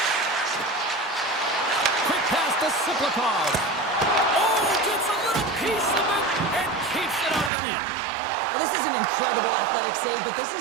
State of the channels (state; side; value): drops out; left; at 7.5 s